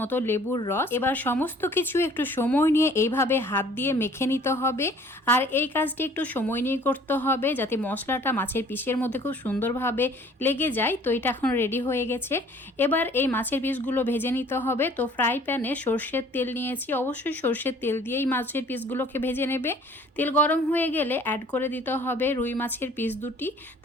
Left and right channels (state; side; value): normal; both; correlation 0.53